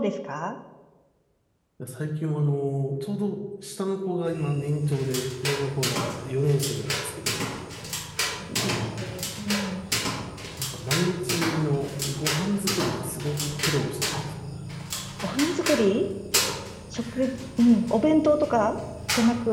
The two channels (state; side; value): identical; both; correlation 1.00